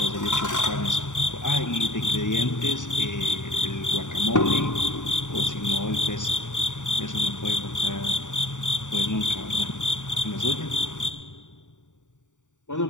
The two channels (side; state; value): right; late; 0.86 ms